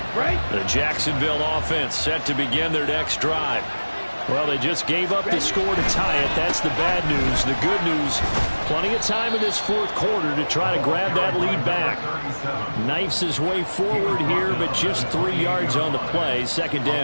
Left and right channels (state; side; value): inverted; both; correlation -1.00